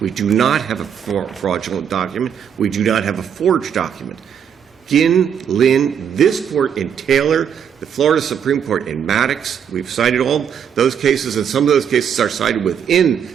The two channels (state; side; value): quieter; left; 8.1 dB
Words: do not have a fraudulent document. We do not have a forged document. Ginn, Lynn, this court in Taylor, the Florida Supreme Court in Maddox, we've cited all those cases, and some of those cases are cited